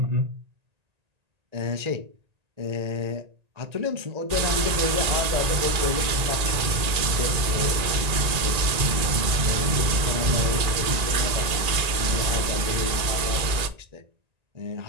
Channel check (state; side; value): late; left; 1.9 ms